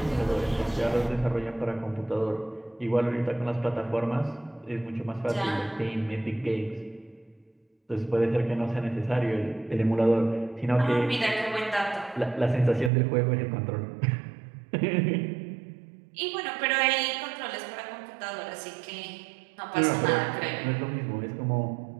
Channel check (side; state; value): left; drops out; at 12.9 s